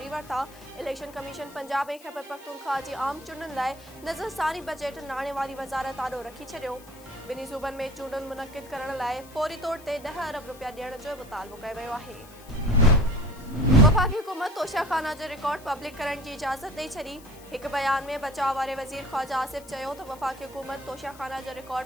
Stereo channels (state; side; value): noise; left; hiss, 22 dB below the sound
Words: वरिता। इलेक्शन कमीशन पंजाब ऐं खैबर पख्तूनख्वा जी आम चूंडुनि लाइ नज़रसानी बजट नाणे वारी वज़ारत आॾो रखी छॾियो। ॿिन्ही सूबनि में चूंडुनि मुनक़िद करण लाइ फौरी तौर ते 10 अरब रुपया ॾियण जो मुतालबो कयो वियो आहे। वफ़ाक़ी हुकूमत तोशाखाना जो रिकॉर्ड पब्लिक करण की इजाज़त ॾेई छॾी। एक बयान में बचाव वारे वज़ीर ख्वाजा आसिफ चयो त वफ़ाक़ी हुकूमत तोशाखाना जो